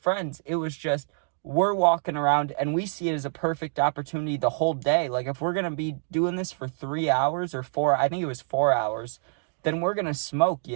It was just, we're walking around and we see it as a perfect opportunity the whole day. Like, if we're going to be doing this for 3 hours or 4, I think it was 4 hours, then we're going to smoke,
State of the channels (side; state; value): left; silent; digital silence